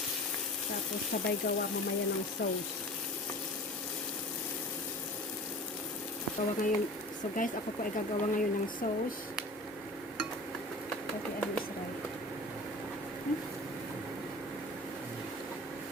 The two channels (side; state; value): both; normal; correlation 0.39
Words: tapos sabay gawa mamaya ng sauce. So guys, ako po ay gagawa ngayon ng sauce. Okay, ano is right.